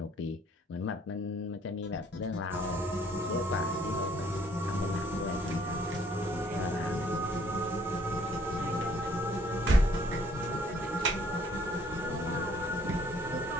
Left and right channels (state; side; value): normal; both; correlation 0.62